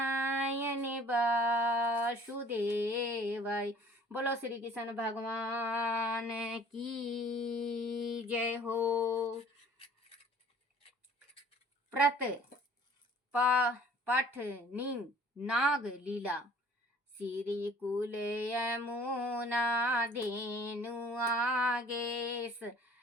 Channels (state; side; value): normal; both; correlation 0.51